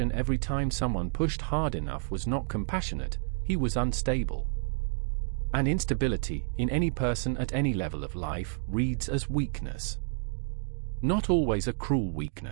every time someone pushed hard enough was not compassionate, he was unstable. And instability, in any person at any level of life, reads as weakness. Not always a cruel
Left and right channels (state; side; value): silent; left; digital silence